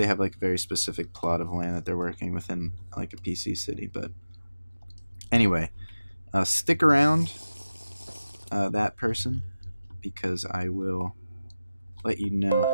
have like a very specific plot of land that they're working within like a PC city. But anyway, stick around, that person, because I will let you know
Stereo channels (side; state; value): both; inverted; correlation -0.96